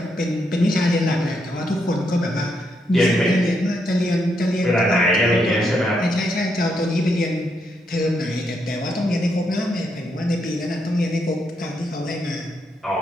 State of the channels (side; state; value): both; normal; correlation 0.79